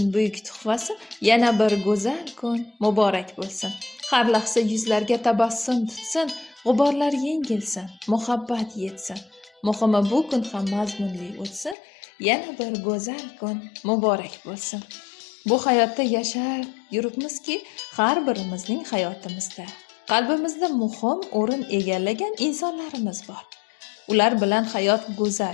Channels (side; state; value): right; drops out; at 11.8 s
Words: buyuk tuhfasi. Yana bir go'zal kun muborak bo'lsin. Har lahza yuzlarga tabassum tutsin, g'uborlar yengilsin, muhabbat yetsin. Muhimi bu kun ham mazmunli o'tsin. Yana bir go'zal kun muborak bo'lsin. Bu hayotda yashar yuribmizki, har birimizning hayotimizda qalbimizda muhim o'rin egallagan insonlarimiz bor. Ular bilan hayot go'zal,